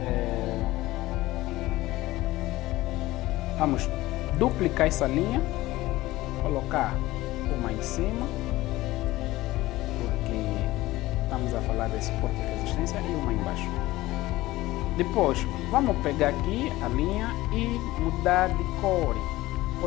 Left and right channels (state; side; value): quieter; right; 17.8 dB